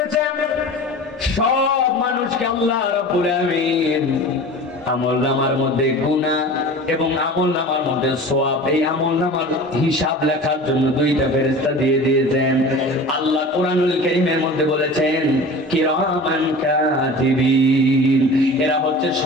সব মানুষকে আল্লাহ রাব্বুল আলামিন আমলনামার মধ্যে গুনাহ এবং আমলনামার মধ্যে সওয়াব, এই আমলনামার হিসাব লেখার জন্য দুইটা ফেরেশতা দিয়ে দিয়েছেন। আল্লাহ কোরআনুল কারীমের মধ্যে বলেছেন কিরামান কাতিবিন, এরা হচ্ছে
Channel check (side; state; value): both; normal; correlation 0.37